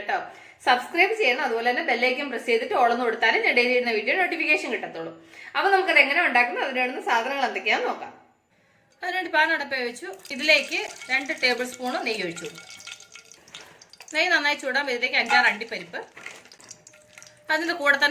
സബ്സ്ക്രൈബ് ചെയ്യണം, അതുപോലെ തന്നെ ബെല്ലൈക്കൻ പ്രസ് ചെയ്തിട്ട് ഓളൊന്ന് കൊടുത്താലും ഞാൻ ഡെയിലി ഇടുന്ന വീഡിയോ നോട്ടിഫിക്കേഷൻ കിട്ടത്തുള്ളൂ. അപ്പൊ നമുക്കത് എങ്ങനെ ഉണ്ടാക്കുന്നത്, അതിന് വേണ്ടുന്ന സാധനങ്ങൾ എന്തൊക്കെയാണെന്ന് നോക്കാം. അതിനുവേണ്ടി പാൻ അടുപ്പ് വെച്ചു. ഇതിലേക്ക് 2 ടേബിൾ സ്പൂൺ നെയ്യ് ഒഴിച്ചു കൊടുക്കും. നെയ്യ് നന്നായി ചൂടാൻ ഇതിലേക്ക് 5-6 അണ്ടിപ്പരിപ്പ്, അതിൻ്റെ കൂടെ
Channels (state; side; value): identical; both; correlation 1.00